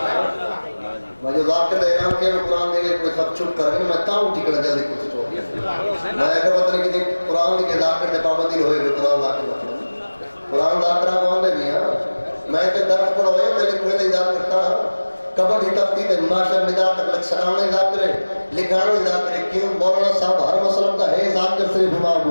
میں جو ذاکر دا اعلان کیا میں قرآن دے گئے کوئی سب چھپ کر گئے میں تاؤں ٹھیکڑا جلدی کچھ چھوڑ میں اگر پتہ نہیں کتنے قرآن کے ذاکر دے پابندی ہوئے ہوئے قرآن ذاکر قرآن ذاکرہ کو آنے بھی ہاں میں تے درس پڑھا ہوئے میرے کوئی نہیں ذاکرتا کبڑ ہی تفتی تے معاشر نگاہ تک لکھ سرانے ذاکرے لکھانے ذاکرے کیوں مولانا صاحب ہر مسلم کا ہے ذاکر صرف امام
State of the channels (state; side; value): inverted; both; correlation -1.00